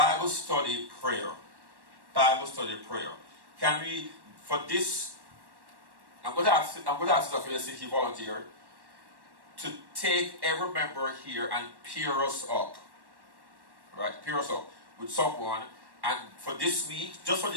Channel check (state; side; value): late; left; 1.1 ms